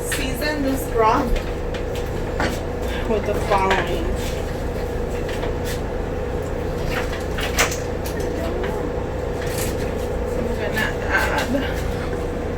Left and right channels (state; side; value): identical; both; correlation 1.00